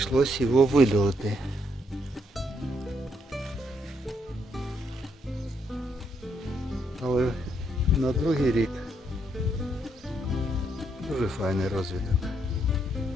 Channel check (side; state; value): both; normal; correlation 0.75